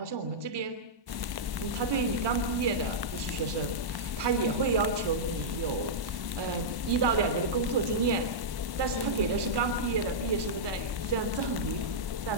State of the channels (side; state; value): left; late; 1.1 ms